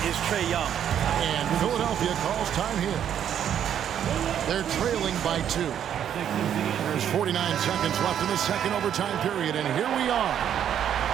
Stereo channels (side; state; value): left; quieter; 9.5 dB